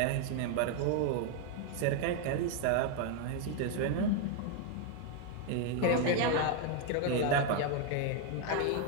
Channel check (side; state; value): both; different; correlation 0.01